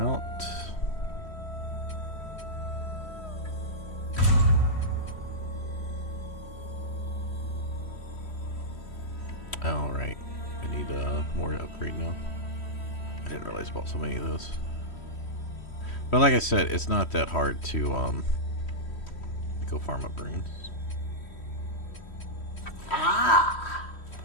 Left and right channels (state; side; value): late; right; 3.1 ms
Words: Alright, I need more to upgrade now. I didn't realize I bought so many of those. But like I said, it's not that hard to go farm up runes. Ah,